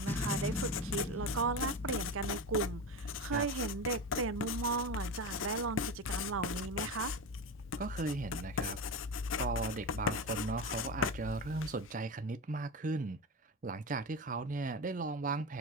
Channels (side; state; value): both; normal; correlation 0.22